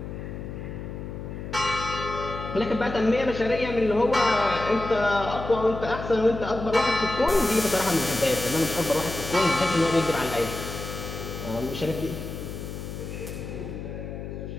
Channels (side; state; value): left; noise; hum, 8 dB below the sound